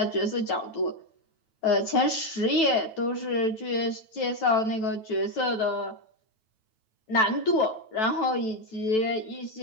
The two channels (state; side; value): late; right; 9.1 ms